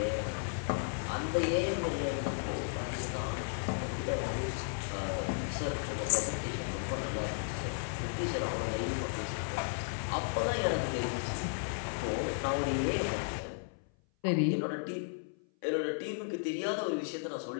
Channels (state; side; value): silent; right; 55 dB below the other